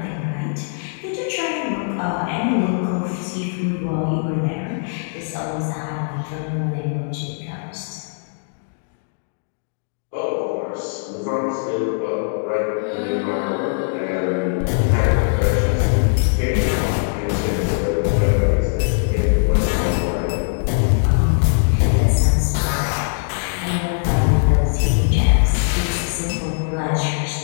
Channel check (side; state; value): right; silent; digital silence